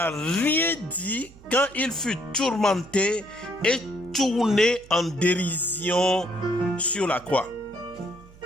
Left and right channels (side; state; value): right; noise; hum, 22 dB below the sound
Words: rien dit quand il fut tourmenté et tourné en dérision sur la croix.